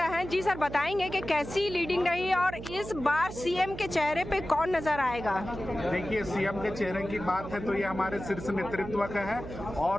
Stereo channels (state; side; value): noise; right; hum, 10 dB below the sound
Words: हैं। जी सर, बताएंगे कि कैसी लीडिंग रही और इस बार सीएम के चेहरे पे कौन नजर आएगा? देखिए, सीएम के चेहरे की बात है तो ये हमारे शीर्ष नेतृत्व का है,